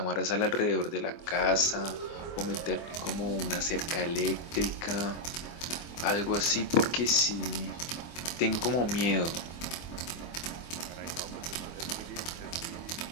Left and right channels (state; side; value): late; right; 24 ms